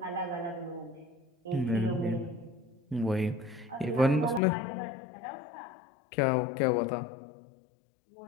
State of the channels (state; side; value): drops out; right; at 4.4 s